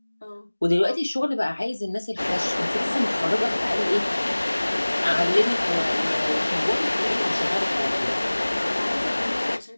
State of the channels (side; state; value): both; inverted; correlation -1.00